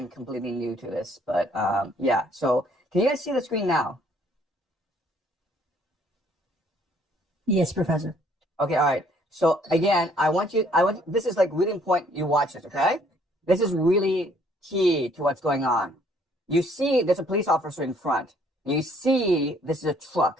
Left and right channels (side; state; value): both; normal; correlation 0.62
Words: completely new to this, but yeah. So can you guys see the screen now? Yes, Professor. Okay, all right. So again, this is like really important you watch this, okay? This is really key to what's going on. You see there's a police officer in front. You see this is a